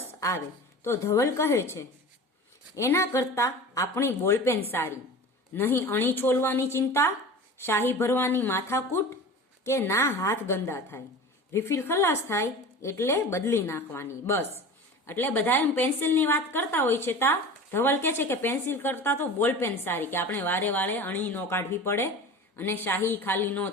આવે. તો ધવલ કહે છે એના કરતા આપણી બોલપેન સારી, નહીં અણી છોલવાની ચિંતા, શાહી ભરવાની માથાકૂટ, કે ના હાથ ગંદા થાય, રિફિલ ખલાસ થાય એટલે બદલી નાખવાની. બસ, એટલે બધા એમ પેન્સિલની વાત કરતા હોય છે. તા ધવલ કહે છે કે પેન્સિલ કરતા તો બોલપેન સારી, કે આપણે વારે વારે અણી ન કાઢવી પડે અને શાહી ખાલી ન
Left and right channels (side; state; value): both; normal; correlation 0.35